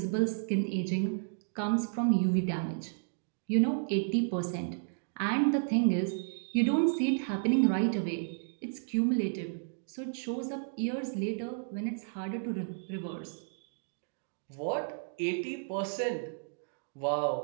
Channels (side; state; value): left; silent; digital silence